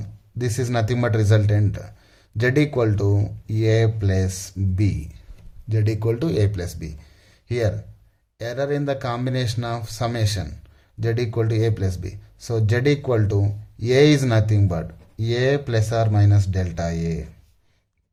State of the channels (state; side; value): identical; both; correlation 1.00